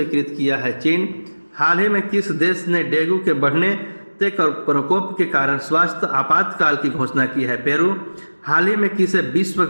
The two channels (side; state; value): both; inverted; correlation -1.00